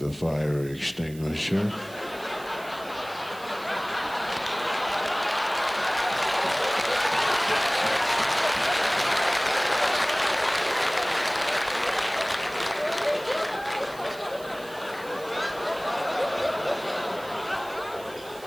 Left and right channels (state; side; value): noise; right; hiss, 20 dB below the sound